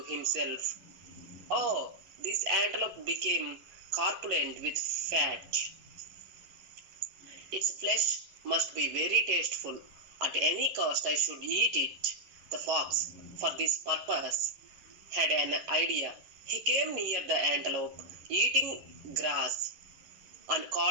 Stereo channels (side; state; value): left; late; 11 ms